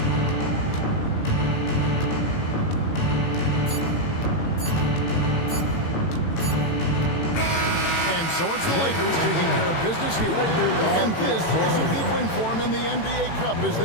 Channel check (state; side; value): late; right; 18 ms